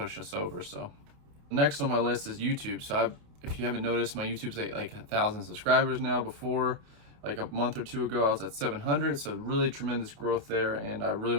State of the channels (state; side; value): late; left; 28 ms